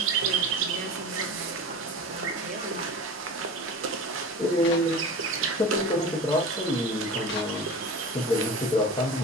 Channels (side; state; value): both; normal; correlation 0.33